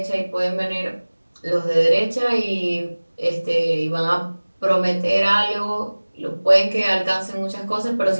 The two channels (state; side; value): inverted; both; correlation -1.00